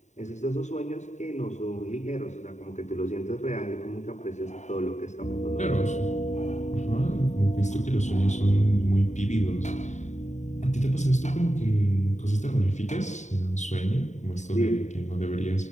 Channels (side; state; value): right; late; 0.34 ms